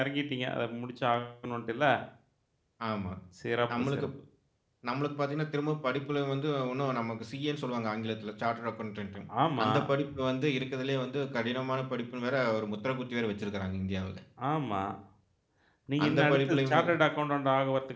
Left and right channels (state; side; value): identical; both; correlation 1.00